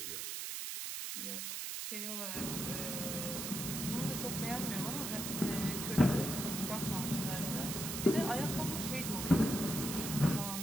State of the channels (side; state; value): right; noise; hiss, 4 dB below the sound